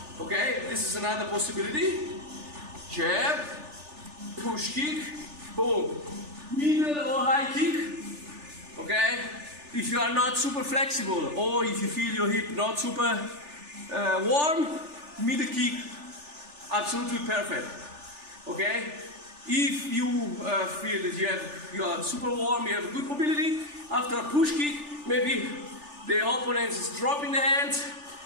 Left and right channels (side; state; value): left; late; 3.4 ms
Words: Okay, this is another possibility. Jab, push kick, boom. Middle or high kick, okay? If you are not super flexible or if you feel your hip not super warm, middle kick, absolutely perfect, okay? If you feel that you are super warm, you have good mobility, after a push kick, maybe the opponent is dropping the hands,